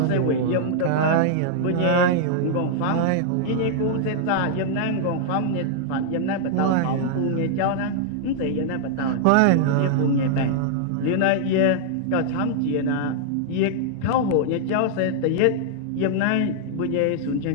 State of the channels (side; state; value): both; different; correlation -0.01